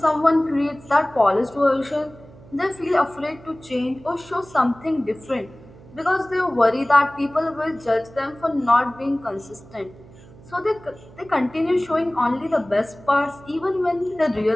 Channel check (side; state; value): right; noise; hum, 22 dB below the sound